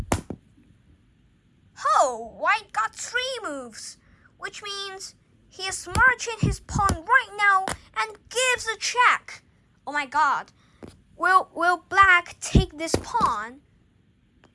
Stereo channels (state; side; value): identical; both; correlation 1.00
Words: Oh, white got 3 moves, which means he is marching his pawn right now and gives a check. Oh my god. Will black take this pawn?